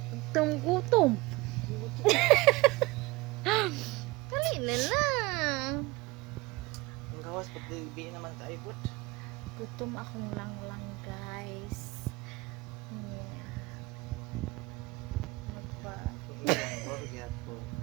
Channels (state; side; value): quieter; left; 22.4 dB